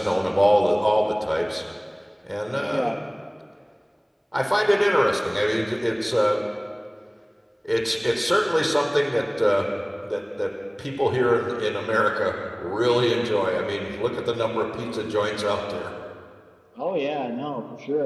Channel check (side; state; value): both; identical; correlation 1.00